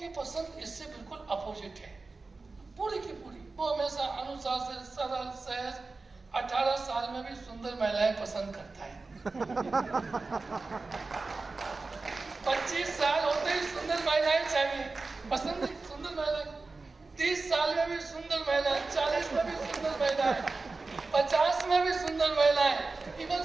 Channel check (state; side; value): quieter; left; 3.8 dB